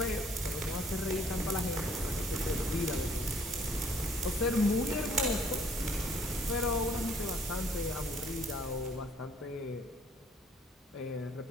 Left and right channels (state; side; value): normal; both; correlation 0.61